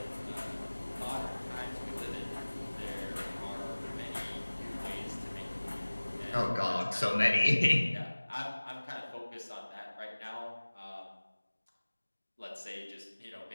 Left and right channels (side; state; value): both; inverted; correlation -1.00